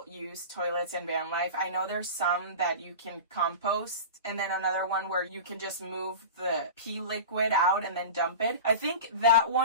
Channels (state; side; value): inverted; both; correlation -0.31